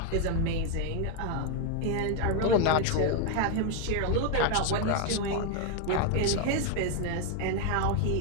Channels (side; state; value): both; different; correlation 0.01